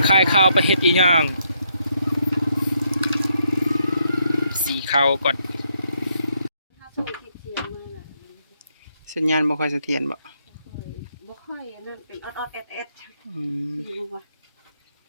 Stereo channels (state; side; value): inverted; both; correlation -0.76